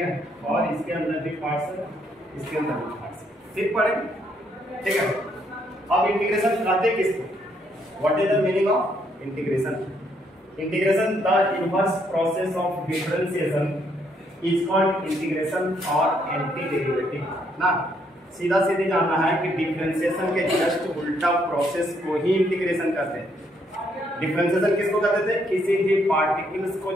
और इसके अंदर भी पार्ट्स है, इसके अंदर भी पार्ट्स सिर्फ पढ़ेंगे। ठीक है, अब इंटीग्रेशन कहते किसको? What is the meaning of integration? Integration the inverse process of differentiation is called integration और एंटी डेरिवेटिव ना। सीधा सीधी जानना है कि डिफरेंशिएशन के जस्ट उल्टा प्रोसेस को ही इंटीग्रेशन कहते हैं। डिफरेंशिएशन किसको कहते थे? किसी भी पार्टिकल्स को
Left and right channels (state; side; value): normal; both; correlation 0.72